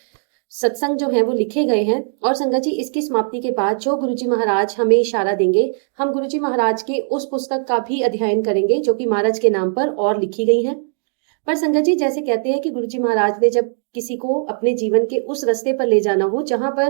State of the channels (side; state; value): left; silent; digital silence